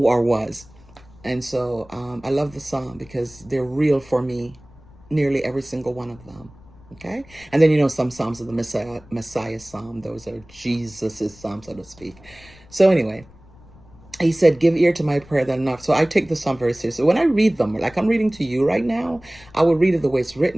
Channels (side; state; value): left; noise; rumble, 24 dB below the sound